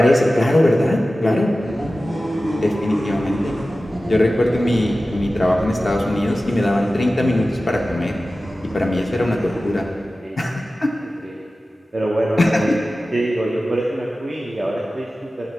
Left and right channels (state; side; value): normal; both; correlation 0.95